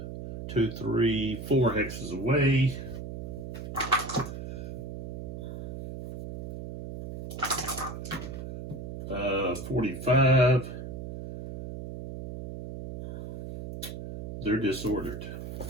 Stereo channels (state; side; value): noise; right; hum, 7 dB below the sound